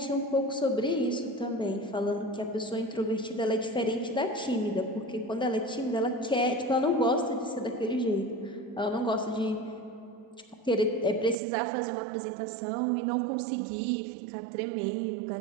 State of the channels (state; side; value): drops out; left; at 11.4 s